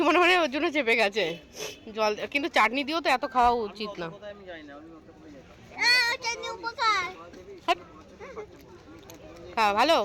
মনে হয় ওর জন্য চেপে গেছে জল, কিন্তু চাটনি দিয়েও তো এত খাওয়া উচিত না। চাটনি উপকার। খাওয়া ভালো,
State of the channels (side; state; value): both; identical; correlation 1.00